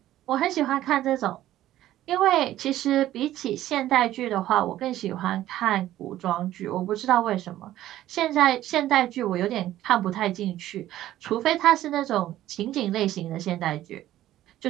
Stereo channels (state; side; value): quieter; left; 13.7 dB